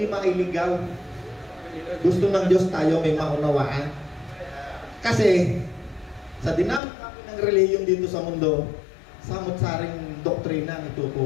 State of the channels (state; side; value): drops out; right; at 6.8 s